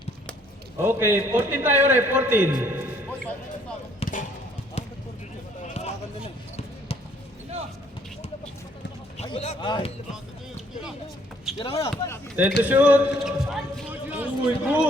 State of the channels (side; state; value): both; normal; correlation 0.64